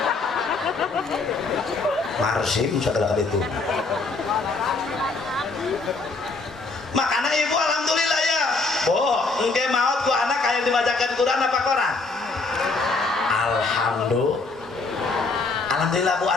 marsim sagala kitu makana ibu alhamdulillah ya engke maot ku anak aya dibacakeun Quran apa koran alhamdulillah bu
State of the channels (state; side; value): quieter; right; 3.7 dB